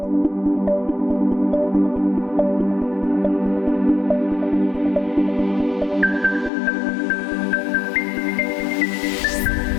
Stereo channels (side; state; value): right; drops out; at 6.5 s